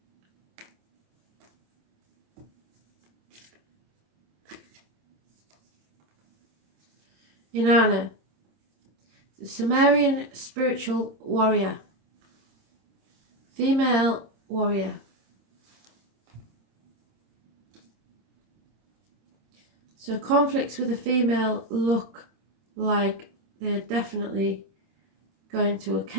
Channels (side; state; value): left; late; 26 ms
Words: Inanna, the Sumerian spiritual warrior, female warrior. So conflicts with a female look like they're definitely going to